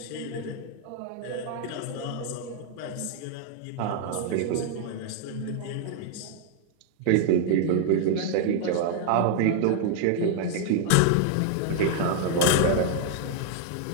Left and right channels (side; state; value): both; different; correlation 0.00